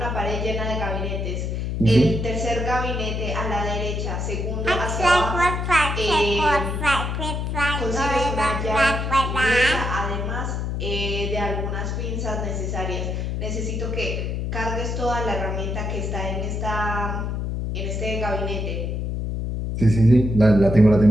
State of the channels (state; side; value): noise; left; hum, 2 dB below the sound